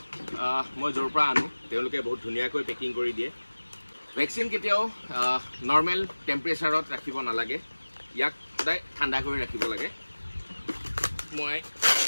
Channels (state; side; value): inverted; both; correlation -1.00